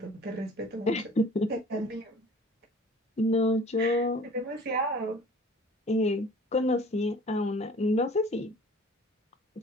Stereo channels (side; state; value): both; normal; correlation 0.47